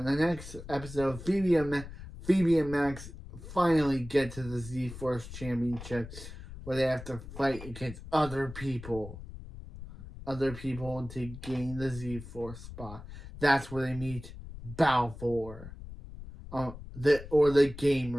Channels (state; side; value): noise; left; rumble, 13 dB below the sound